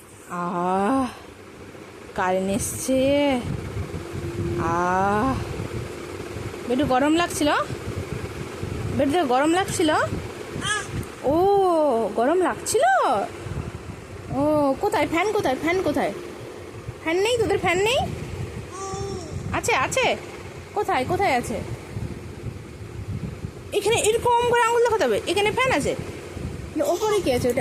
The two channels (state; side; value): identical; both; correlation 1.00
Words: কারেন্ট এসছে। বেটু গরম লাগছিল? বেটু গরম লাগছিল? ও গরম লাগছিল। ও কোথায় ফ্যান? কোথায় ফ্যান? কোথায় ফ্যান? নেই তোদের ফ্যান নেই? আছে আছে। কোথায় কোথায় আছে? এখানে এরকম করে আঙুল দেখাতে হবে। এখানে ফ্যান আছে। ওপরে কি আছে?